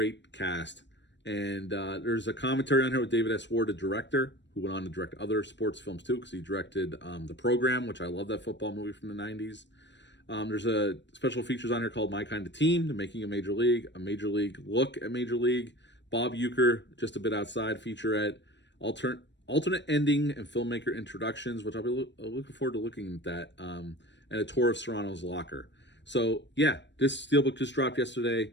cast. And there's a commentary on here with David S. Ward, the director, who went on to direct other sports films too, because he directed The Program, which I love, that football movie from the 90s. There's a special features on here called My Kind of Team, The Making of Major League, a Major League look at Major League, Bob Uecker, Just a Bit Outside featurette, alternate ending and filmmaker introductions, which I'll be looking forward to looking at that, and a tour of Serrano's locker. So yeah, this steelbook just dropped yesterday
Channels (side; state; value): right; late; 0.52 ms